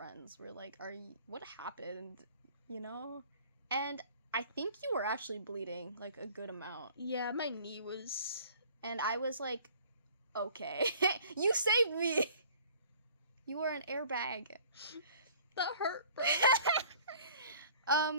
were like, what happened, you know? And I think you were actually bleeding, like, a good amount. Yeah, my knee was... And I was like, okay. You saved me! You were an airbag. That hurt, bro.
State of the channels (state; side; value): inverted; both; correlation -0.52